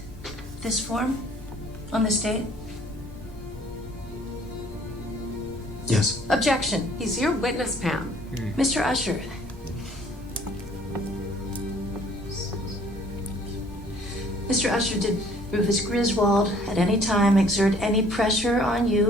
this form on this date? Yes. Objection. He's your witness, Pam. Mr. Usher. Mr. Usher, did Rufus Griswold at any time exert any pressure on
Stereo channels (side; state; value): both; normal; correlation 0.57